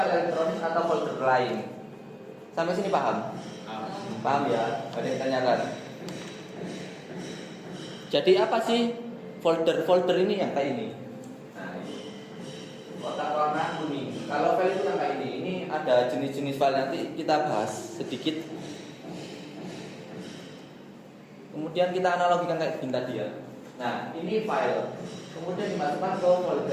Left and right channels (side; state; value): both; identical; correlation 1.00